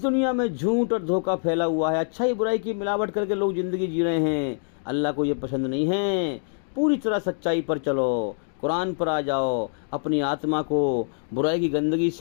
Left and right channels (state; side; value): silent; right; digital silence